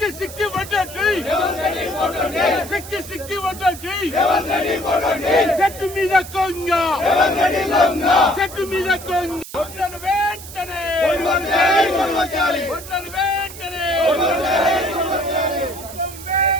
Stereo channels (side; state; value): right; noise; hiss, 14 dB below the sound